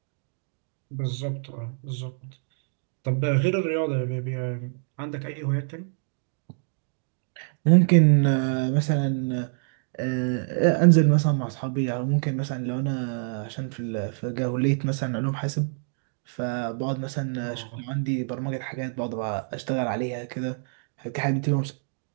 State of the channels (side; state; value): left; silent; digital silence